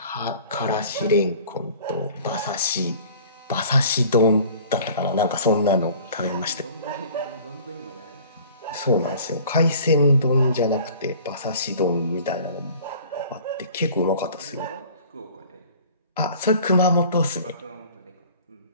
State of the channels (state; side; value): inverted; both; correlation -0.47